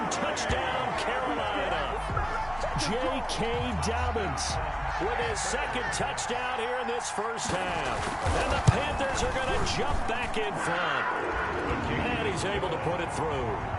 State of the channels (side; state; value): both; identical; correlation 1.00